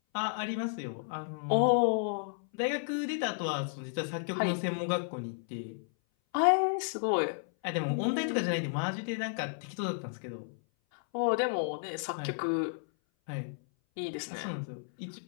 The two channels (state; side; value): silent; right; 56 dB below the other